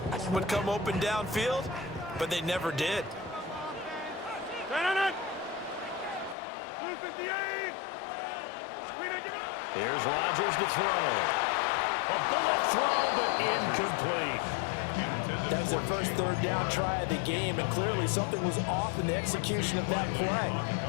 would come open downfield, but they never did. 258. Here's Rodgers to throw. A bullet throw, but incomplete. That was their first third down try of the game, and clearly something was off in the execution of that play.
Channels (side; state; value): right; drops out; at 6.4 s